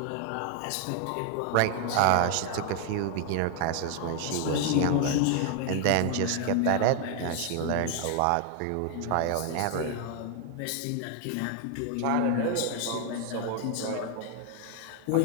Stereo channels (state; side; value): different; both; correlation 0.00